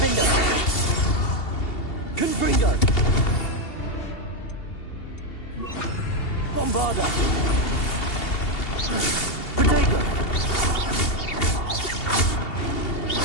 Confringo. Bombarda. Protego.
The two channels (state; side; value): late; right; 2.7 ms